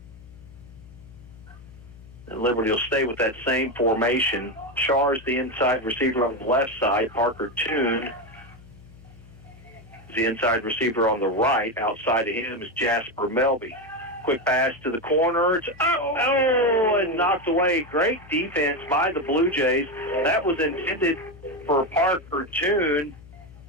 And Liberty will stay with that same formation. Shaw is the inside receiver on the left side. Parker Toon is the inside receiver on the right. Outside of him is Jasper Melby. Quick pass to the corner. It's and knocked away. Great defense by the Blue Jays. That was intended for Parker Toon.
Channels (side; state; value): left; noise; hum, 21 dB below the sound